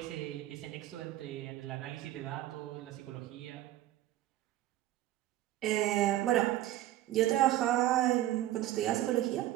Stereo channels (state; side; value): quieter; left; 14.3 dB